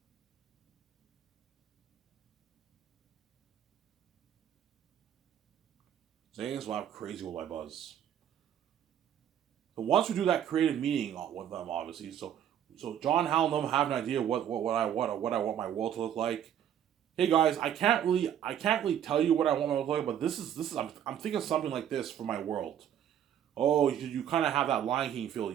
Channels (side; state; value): left; quieter; 9.9 dB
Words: Zanians will have crazy worldwide buzz. So once we do that creative meeting with them, obviously, so John Hal and them have an idea what I want my world to look like. Hey guys, I can't really tell you what I want my world to look like, but this is I'm thinking something like this for my world. Oh, you kind of have that Lion King feel,